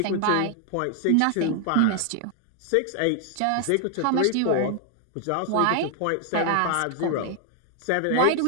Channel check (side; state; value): both; different; correlation 0.00